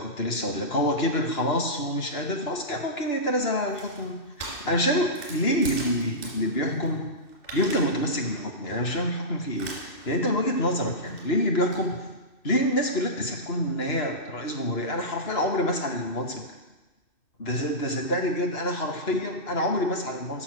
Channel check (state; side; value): late; right; 2.6 ms